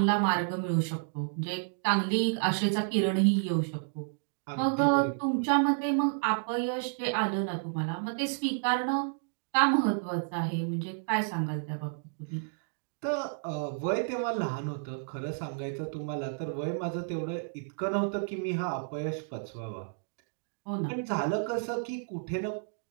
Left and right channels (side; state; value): left; silent; digital silence